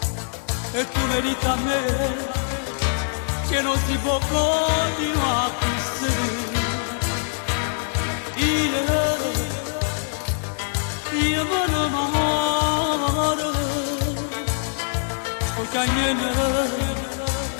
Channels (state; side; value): silent; right; digital silence